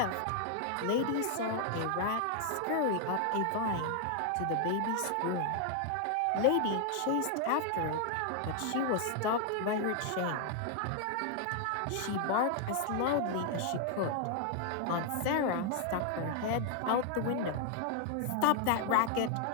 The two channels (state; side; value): different; both; correlation 0.00